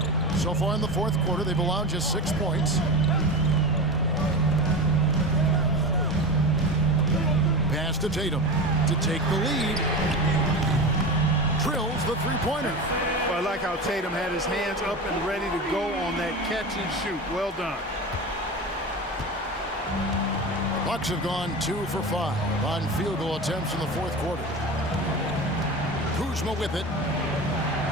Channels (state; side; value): normal; both; correlation 0.26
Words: So far in the fourth quarter, they've allowed just 6 points. Pass to Tatum to take the lead. Drills the three-pointer. Well, I like how Tatum had his hands up and ready to go on that catch and shoot. Well done. Bucks have gone 2 for 5 on field goal attempts in the fourth quarter. Kuzma with it.